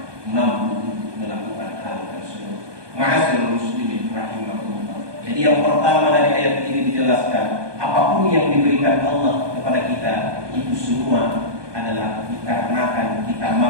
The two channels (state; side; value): late; left; 1.2 ms